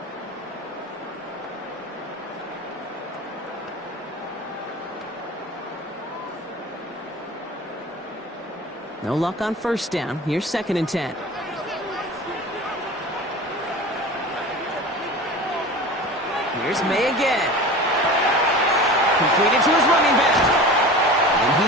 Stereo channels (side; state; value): both; normal; correlation 0.35